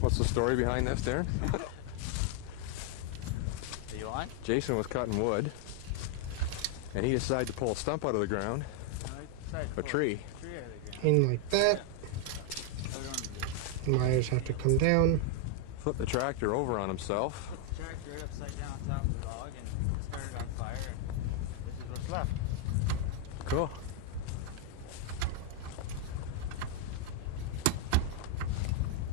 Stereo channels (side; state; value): both; different; correlation 0.00